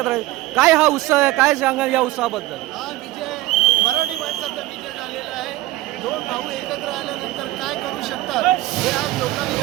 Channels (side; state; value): left; quieter; 17.4 dB